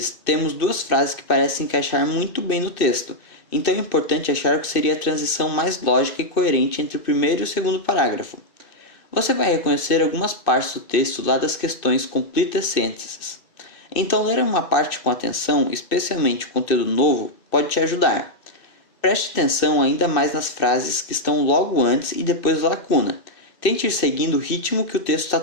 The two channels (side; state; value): right; late; 2.6 ms